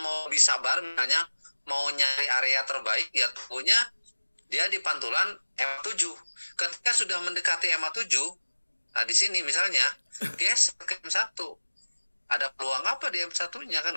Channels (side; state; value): both; inverted; correlation -1.00